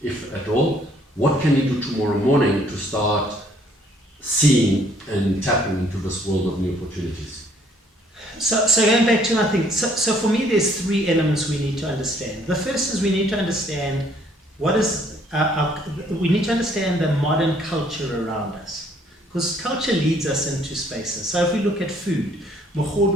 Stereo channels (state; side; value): normal; both; correlation 0.63